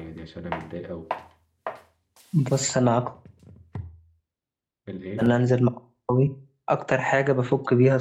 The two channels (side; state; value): both; identical; correlation 1.00